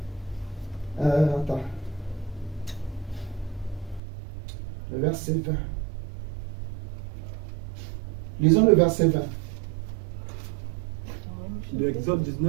Attends. Le verset 20. Lisons le verset 20. De Exode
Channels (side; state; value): left; drops out; at 4.0 s